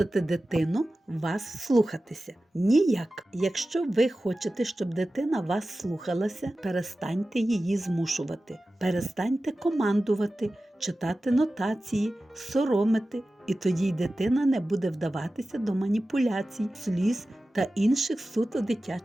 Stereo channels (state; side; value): normal; both; correlation 0.95